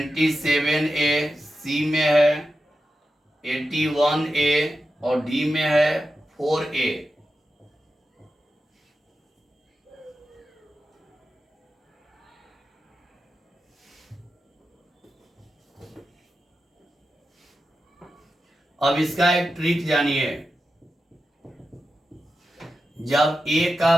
सी में है 81A और डी में है 4A। अब इसका एक ट्रिक जानिए। जब ए का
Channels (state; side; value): normal; both; correlation 0.90